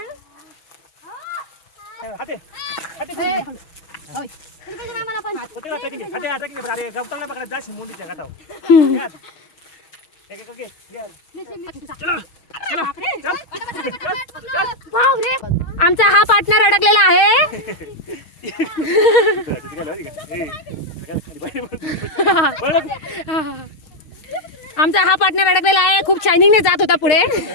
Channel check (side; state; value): right; late; 6.4 ms